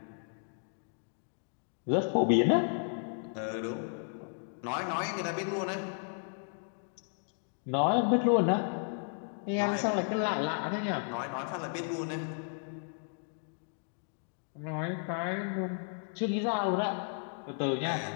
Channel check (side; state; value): right; silent; 55 dB below the other